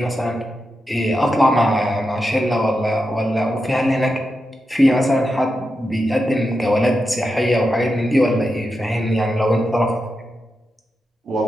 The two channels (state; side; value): normal; both; correlation 0.88